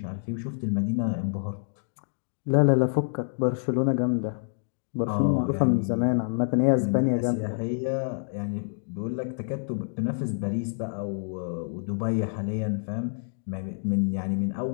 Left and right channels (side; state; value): right; silent; digital silence